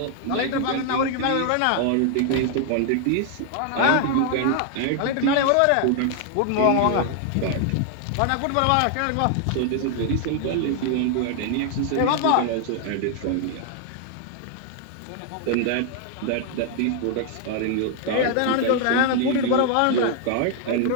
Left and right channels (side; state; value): both; different; correlation 0.00